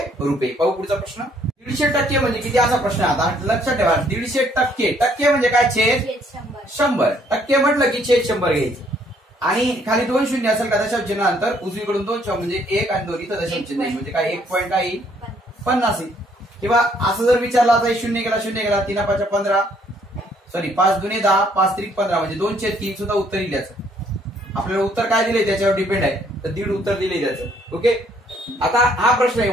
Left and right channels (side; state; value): both; normal; correlation 0.66